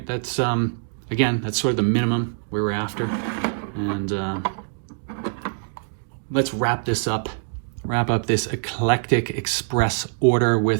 That's, again, that's sort of the minimum we were after. And let's wrap this up wrap up this eclectic express order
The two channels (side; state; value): left; silent; digital silence